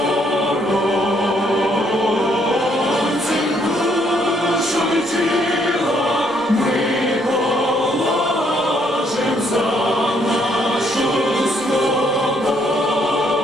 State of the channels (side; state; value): both; normal; correlation 0.70